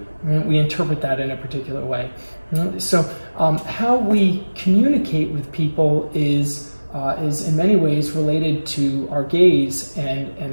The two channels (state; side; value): inverted; both; correlation -1.00